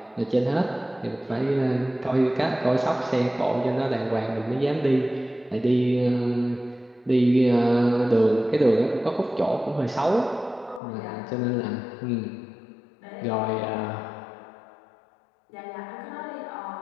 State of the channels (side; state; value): right; drops out; at 10.8 s